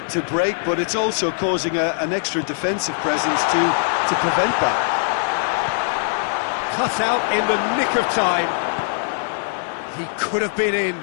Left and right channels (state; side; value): silent; right; digital silence